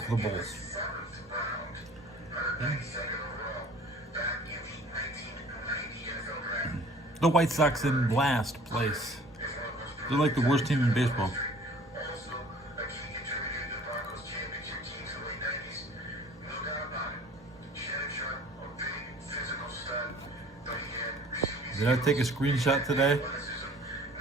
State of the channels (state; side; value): normal; both; correlation 0.50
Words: the Bulls? The White Sox in last place. They're like the worst team in baseball. Did I take a screenshot today?